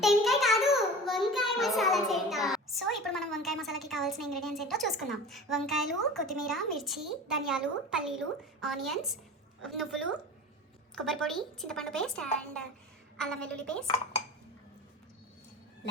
టెంకాయ కాదు, వంకాయ మసాలా చేద్దాం. సో ఇప్పుడు మనం వంకాయ మసాలాకి కావాల్సిన ఇంగ్రీడియంట్స్ ఏంటో చూసుకుందాం. వంకాయలు, కొత్తిమీర, మిర్చి, ధనియాలు, పల్లీలు, ఆనియన్స్, నువ్వులు, కొబ్బరి పొడి, చింతపండు పేస్ట్ అండ్ అల్లం వెల్లుల్లి పేస్ట్.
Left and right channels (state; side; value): normal; both; correlation 0.35